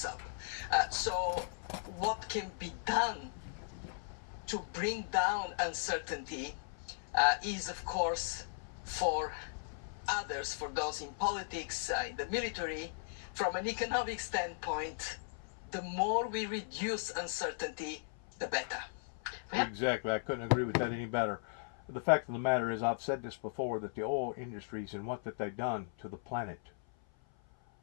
up. So what can be done to bring down uncertainty is, of course, for others, for those in politics, in the military, from an economic standpoint, the more we reduce uncertainty, the better. Exactly. I couldn't agree with that any better. The fact of the matter is, I've said this before, that the oil industries and what that they've done to the planet,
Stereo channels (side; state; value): right; silent; 53 dB below the other